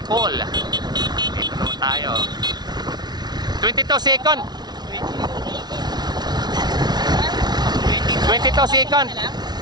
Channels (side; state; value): left; late; 0.20 ms